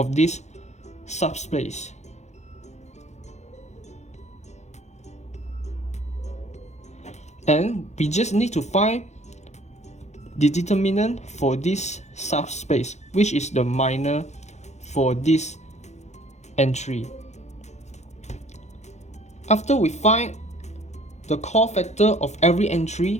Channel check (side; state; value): right; late; 0.33 ms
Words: this subspace. And we just need to find the determinant for this subspace, which is the minor for this entry. After we find the cofactor of every